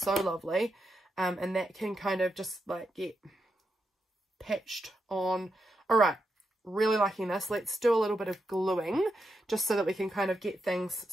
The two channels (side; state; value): both; normal; correlation 0.84